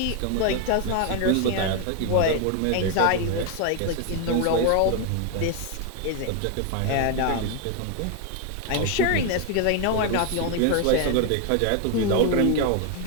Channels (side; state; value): both; different; correlation 0.01